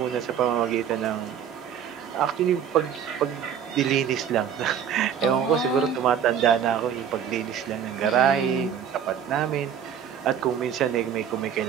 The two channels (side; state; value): left; quieter; 8.4 dB